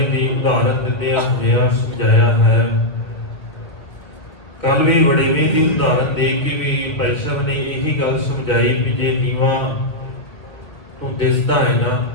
की उदाहरण दिंदे हुए समझाया है। कल भी वडेवे की उदाहरण दे के भी भाई साहब ने यही गल समझाई भी जे नीवा तू दिसदा है ना,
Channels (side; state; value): right; late; 1.8 ms